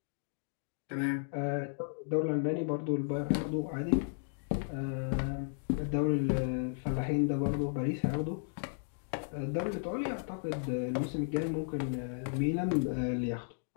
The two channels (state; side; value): silent; right; digital silence